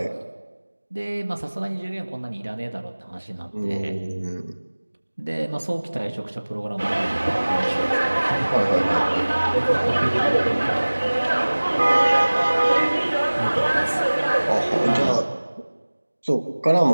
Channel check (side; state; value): both; inverted; correlation -1.00